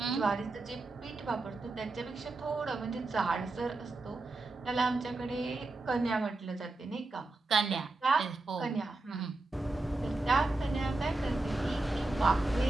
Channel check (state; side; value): quieter; left; 3.1 dB